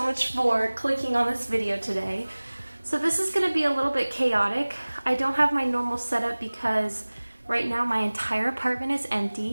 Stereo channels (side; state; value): both; inverted; correlation -1.00